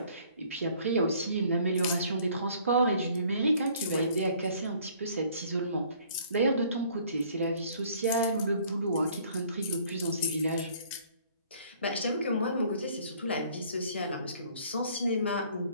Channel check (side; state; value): both; inverted; correlation -0.57